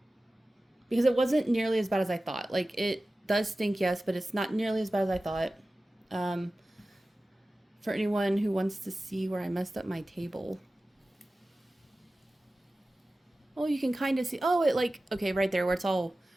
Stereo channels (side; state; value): both; normal; correlation 0.96